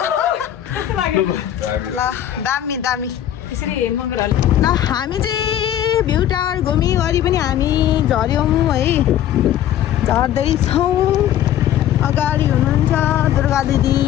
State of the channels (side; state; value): right; quieter; 11.4 dB